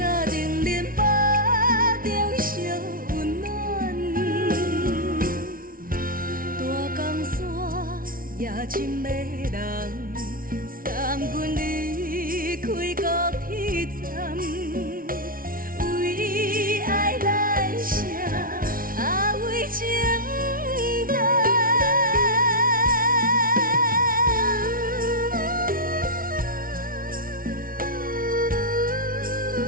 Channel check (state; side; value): late; left; 0.42 ms